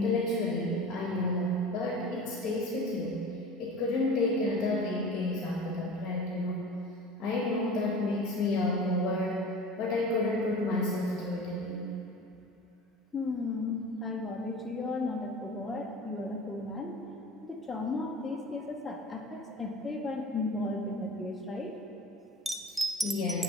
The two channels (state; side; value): normal; both; correlation 0.37